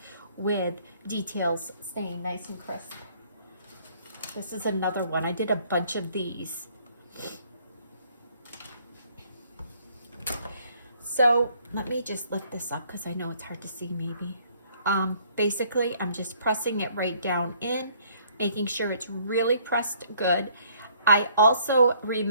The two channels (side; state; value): both; inverted; correlation -0.62